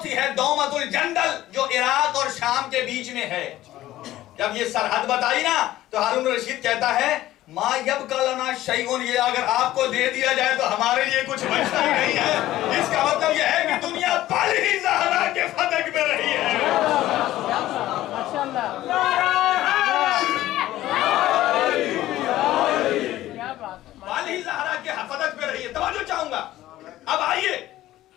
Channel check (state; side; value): quieter; right; 14.9 dB